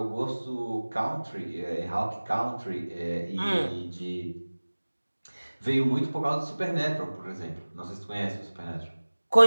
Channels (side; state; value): both; inverted; correlation -1.00